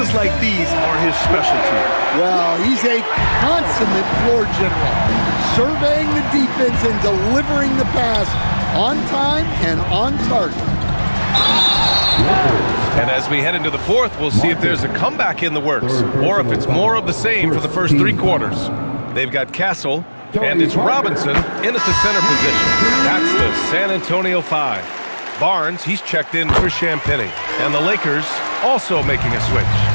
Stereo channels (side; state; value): both; inverted; correlation -1.00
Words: like these are his specialty. Well, he's a consummate floor general, surveying the defense and delivering the pass on time and on target. And as we head into the fourth, we'll see if there's a comeback in the works or if it's more of the same for the first three quarters. They've got Castle, and it's Robinson in at the center position. That's the San Antonio 5. Barnes, he's checked in for Champagny. And the Lakers also making a